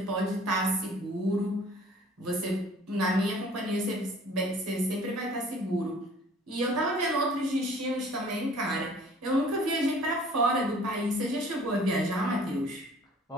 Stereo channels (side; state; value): both; normal; correlation 0.52